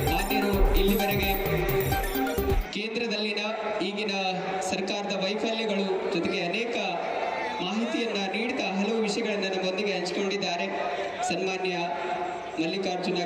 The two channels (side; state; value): both; identical; correlation 1.00